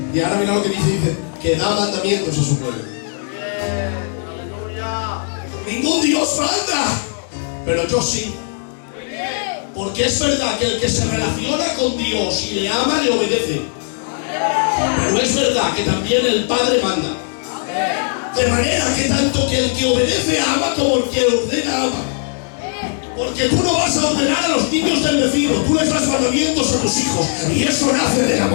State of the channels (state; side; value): silent; right; 67 dB below the other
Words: Y ahora mira lo que dice, que da mandamientos a su pueblo. Ningún Dios manda, pero yo sí. Porque es verdad que el que se relaciona con Dios y le ama, le obedece. Pero es verdad que también el Padre manda. De manera que tanto que el que obedece ama como el que ordena ama. Porque tú no vas a ordenar a los niños del vecino, tú les das mandamientos a tus hijos y eso nace del